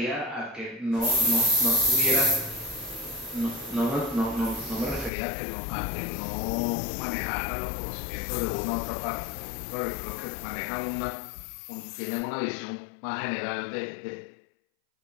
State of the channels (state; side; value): drops out; right; at 5.1 s